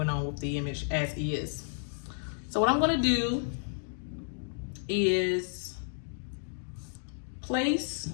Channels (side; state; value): right; silent; digital silence